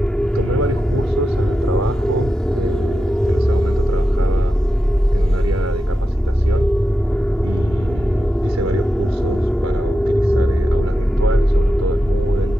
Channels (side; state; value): both; normal; correlation 0.90